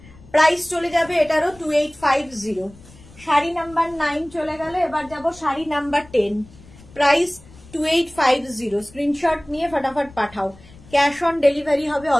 প্রাইস চলে যাবে এটারও 2850। শাড়ি নাম্বার 9 চলে গেল, এবার যাব শাড়ি নাম্বার 10, প্রাইস 2850। স্ক্রিনশট নিয়ে ফটাফট পাঠাও, ক্যাশ অন ডেলিভারি হবে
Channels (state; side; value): noise; left; rumble, 22 dB below the sound